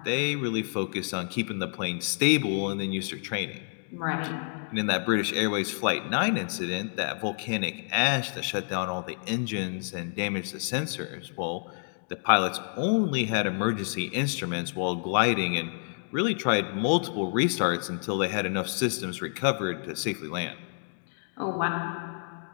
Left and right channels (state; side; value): silent; right; 59 dB below the other